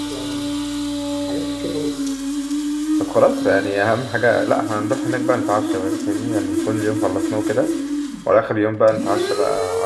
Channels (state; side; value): identical; both; correlation 1.00